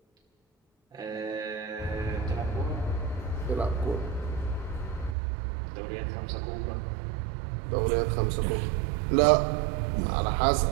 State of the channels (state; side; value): drops out; left; at 5.2 s